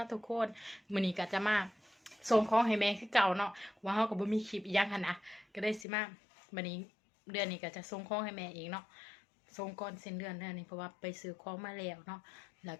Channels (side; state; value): right; drops out; at 5.9 s